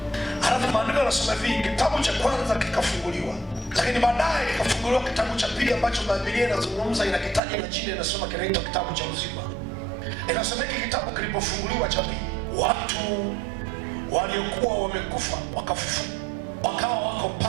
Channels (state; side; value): drops out; left; at 7.4 s